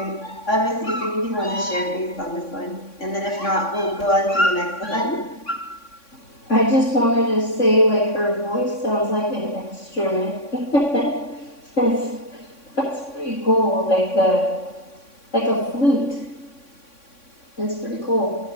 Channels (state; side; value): late; right; 3.6 ms